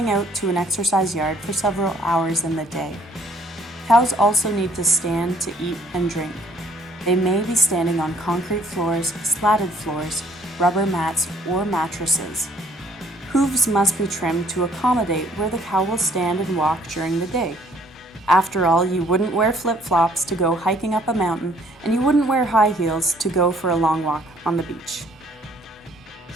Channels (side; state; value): both; normal; correlation 0.60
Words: out to an exercise yard for several hours in the day. Cows also need to stand to eat and drink. They may be standing on concrete floors, slatted floors, rubber mats, or mattresses. Hooves must be trimmed to accommodate where the cow will stand and walk during the day. After all, you wouldn't wear flip-flops to go hiking up a mountain, and you wouldn't wear high heels to go for a long walk on the beach.